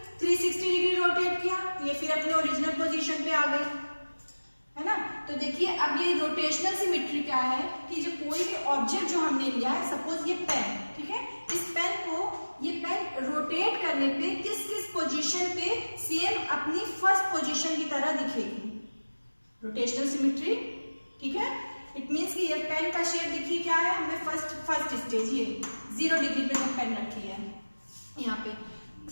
360 डिग्री रोटेट किया, ये फिर अपने ओरिजिनल पोजीशन पे आ गई, है ना. तो देखिए अब ये रोटेशनल सिमेट्री क्या है कि जो कोई भी ऑब्जेक्ट जो हमने लिया है, सपोज ये पेन, ठीक है, इस पेन को ये पेन रोटेट करने पे किस किस पोजीशन पे सेम अपनी फर्स्ट पोजीशन की तरह दिखेगी, रोटेशनल सिमेट्री. ठीक है, इट मींस कि ये पेन का शेप देखिए क्या है, हमने फर्स्ट स्टेज ये 0 डिग्री पे जो पेन रखी है यहाँ पे.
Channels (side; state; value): both; inverted; correlation -1.00